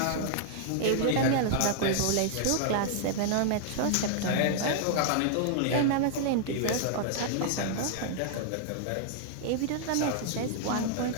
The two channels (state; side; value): different; both; correlation -0.01